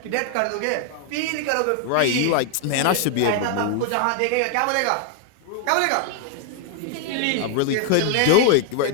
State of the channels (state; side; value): different; both; correlation 0.00